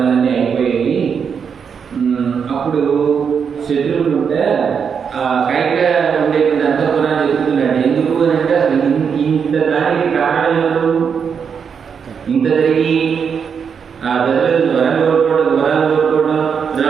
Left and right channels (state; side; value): quieter; left; 6.7 dB